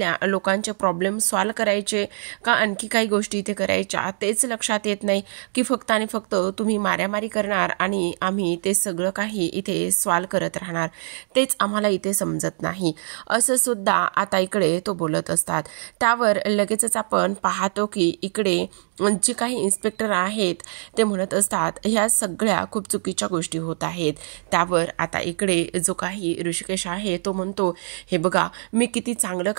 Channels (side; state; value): left; silent; 60 dB below the other